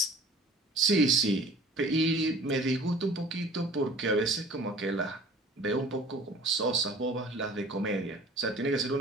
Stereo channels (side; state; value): both; normal; correlation 0.47